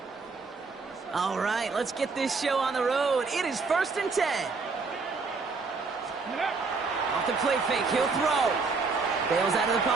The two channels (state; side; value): quieter; left; 4.4 dB